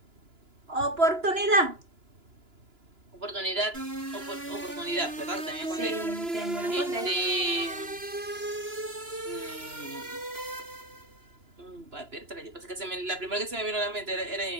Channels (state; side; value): late; left; 2.9 ms